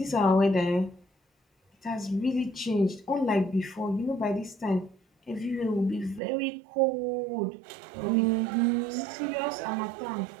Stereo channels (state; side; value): drops out; left; at 6.2 s